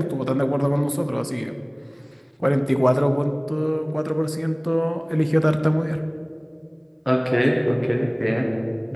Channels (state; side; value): identical; both; correlation 1.00